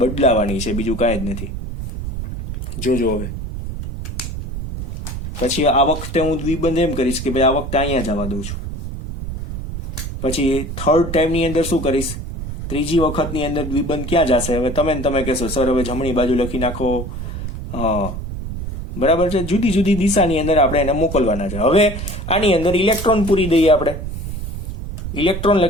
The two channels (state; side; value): noise; right; rumble, 7 dB below the sound